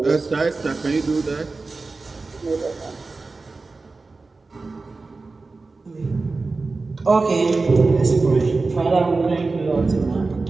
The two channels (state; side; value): quieter; left; 3.8 dB